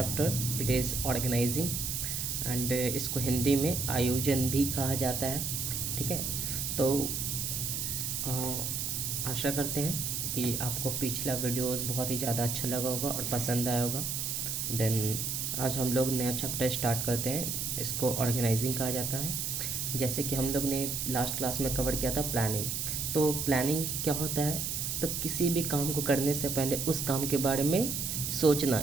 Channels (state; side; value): noise; right; hiss, 2 dB below the sound